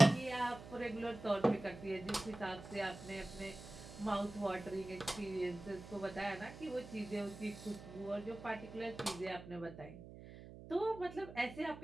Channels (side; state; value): right; noise; hum, 14 dB below the sound